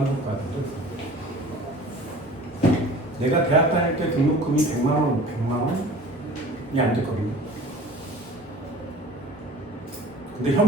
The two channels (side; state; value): both; normal; correlation 0.45